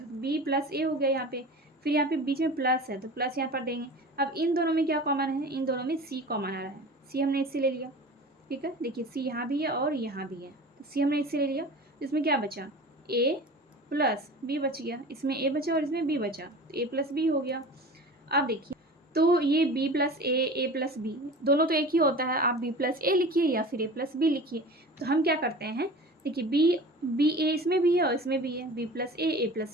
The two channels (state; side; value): normal; both; correlation 0.37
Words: तो बी प्लस ए हो गया यहाँ पे। फिर यहाँ पे बीच में प्लस है तो प्लस यहाँ पर देंगे। अब इन दोनों में क्या कॉमन है, इन दोनों में सी कॉमन आ रहा है, सी हमने इससे ले लिया। ठीक है, देखिए सी यहाँ भी है और यहाँ भी है, तो सी हमने इससे ले लिया। इसमें क्या बचा, ए प्लस बी बच गया, इसमें ए बचा और इसमें बी बचा, तो ए प्लस बी हो गया। अब देखिए, तो ये बी प्लस ए प्लस बी दोनों तो एक ही होता है, आप बी प्लस ए लिखिए या फिर ए प्लस बी लिखिए। तो हम क्या करते हैं, देखिए बी ए इसमें भी है और इसमें भी है, बी प्लस ए